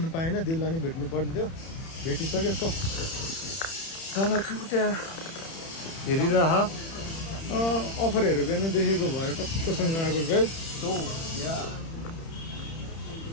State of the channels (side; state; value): right; late; 30 ms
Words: पाएन दिललाई नै भेट्नु पर्ने थियो भेटिसक्यो सो दादा चाहिँ त्यहाँ हेरिरह अफरहरू बिहान देखेको भएर टक्कसँग आएको गाइस सो या